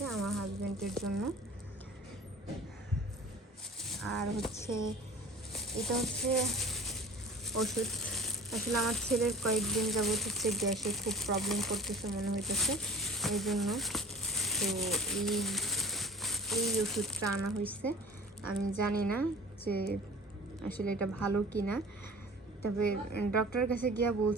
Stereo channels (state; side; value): normal; both; correlation 0.44